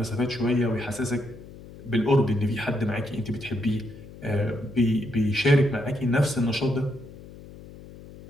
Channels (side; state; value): left; noise; hum, 17 dB below the sound